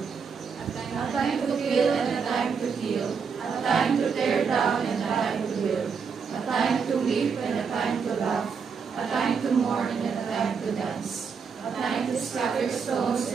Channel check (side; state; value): left; quieter; 5.9 dB